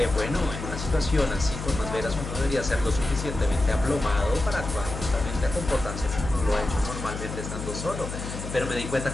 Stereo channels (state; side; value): noise; left; hum, 7 dB below the sound